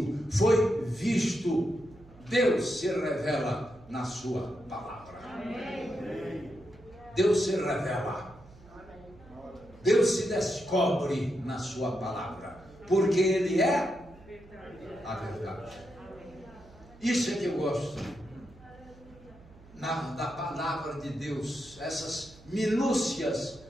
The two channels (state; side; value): noise; right; hum, 23 dB below the sound